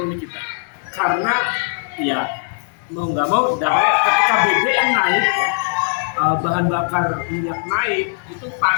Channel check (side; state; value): right; silent; digital silence